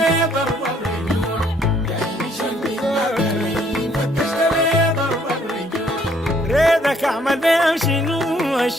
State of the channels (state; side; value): normal; both; correlation 0.65